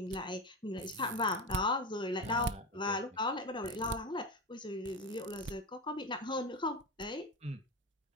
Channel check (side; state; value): both; normal; correlation 0.20